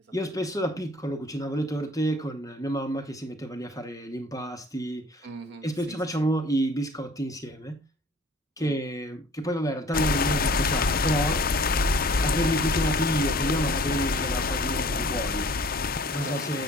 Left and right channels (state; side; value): normal; both; correlation 0.51